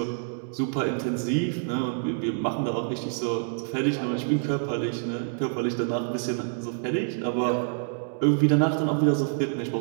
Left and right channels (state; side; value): silent; left; digital silence